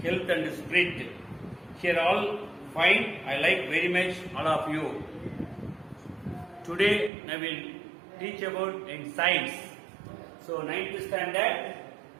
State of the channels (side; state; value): left; drops out; at 7.1 s